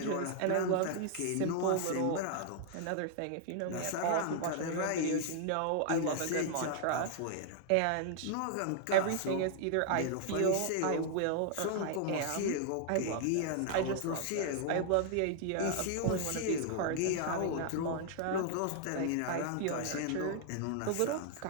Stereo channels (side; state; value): both; different; correlation 0.00